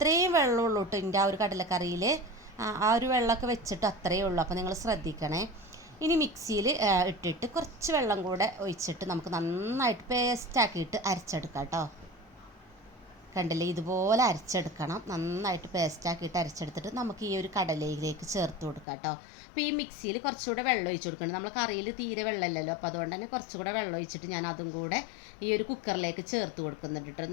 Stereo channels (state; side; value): drops out; right; at 18.9 s